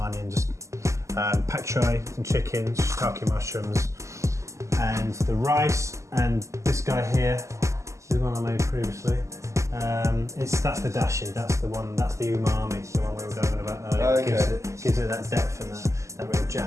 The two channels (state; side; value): late; left; 0.15 ms